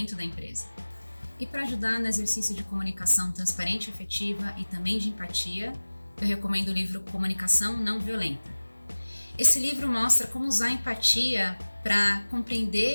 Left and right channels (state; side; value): inverted; both; correlation -1.00